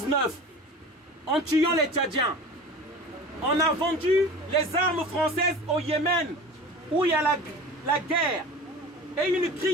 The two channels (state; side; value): normal; both; correlation 0.37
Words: en tuant les Tchadiens. On a vendu les armes françaises au Yémen où il y a la guerre et une